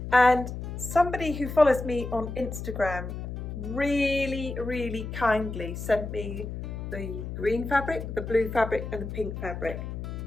And somebody who follows me on Instagram really kindly sent me the green fabric, the blue fabric and the pink fabric.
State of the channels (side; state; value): left; noise; hum, 7 dB below the sound